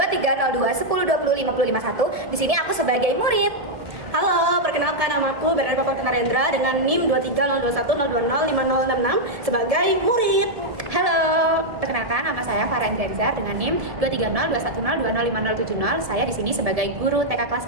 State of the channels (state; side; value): late; left; 1.7 ms